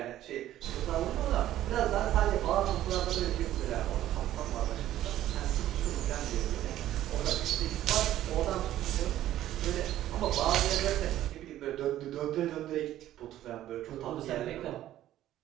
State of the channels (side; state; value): left; quieter; 13.1 dB